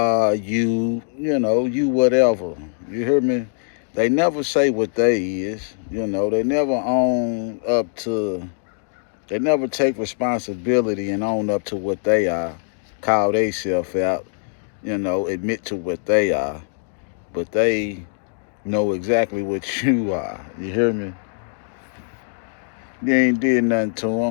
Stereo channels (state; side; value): silent; right; 59 dB below the other